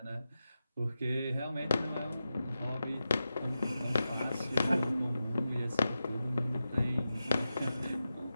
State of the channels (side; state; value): both; inverted; correlation -0.91